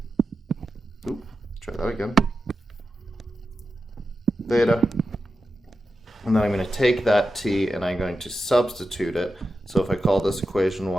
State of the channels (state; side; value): normal; both; correlation 0.90